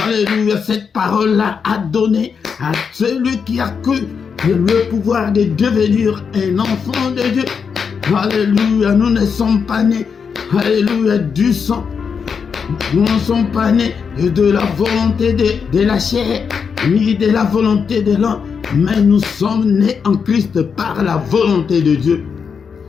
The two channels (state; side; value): quieter; right; 6.2 dB